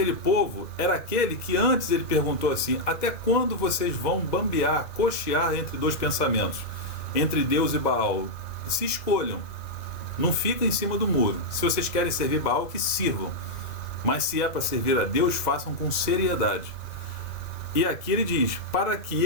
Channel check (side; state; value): right; late; 2.0 ms